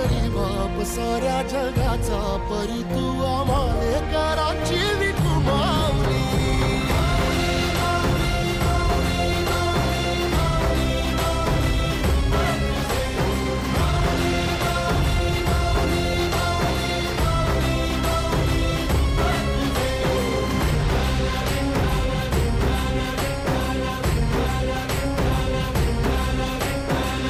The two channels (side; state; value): both; identical; correlation 1.00